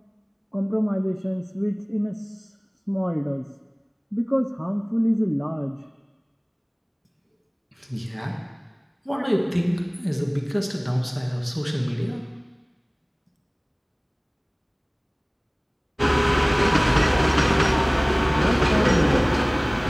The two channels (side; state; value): both; identical; correlation 1.00